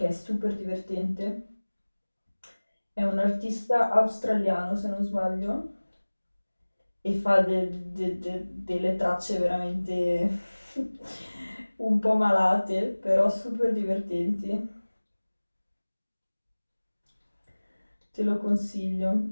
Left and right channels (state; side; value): inverted; both; correlation -1.00